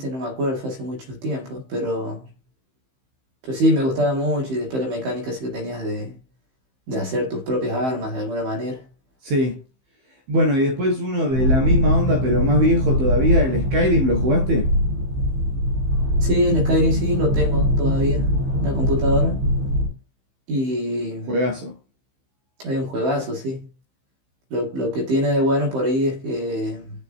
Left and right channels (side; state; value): left; late; 15 ms